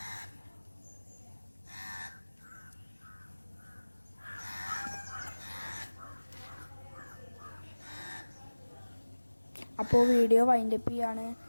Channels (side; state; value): both; inverted; correlation -1.00